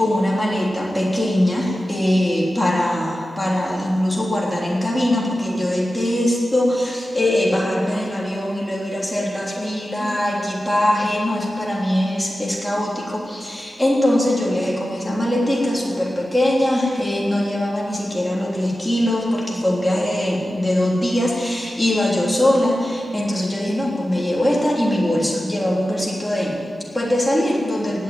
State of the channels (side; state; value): both; normal; correlation 0.93